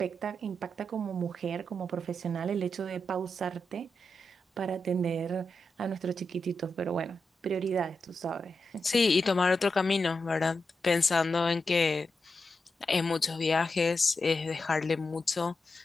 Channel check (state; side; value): normal; both; correlation 0.87